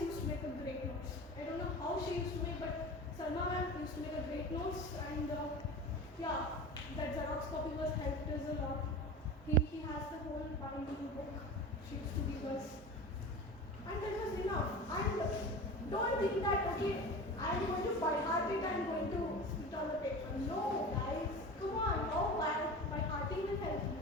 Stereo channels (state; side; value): normal; both; correlation 0.32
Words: used to make a great notes. I don't know how she used to make, but Salma ma'am used to make a great notes, and yeah, that Xerox copy was helped us a lot. He has the whole binding book she used to give us. And that was enough. And don't think that, okay, I am going to by heart it, I am going to spit on the paper. No, guys, come on, how by hearting will help you.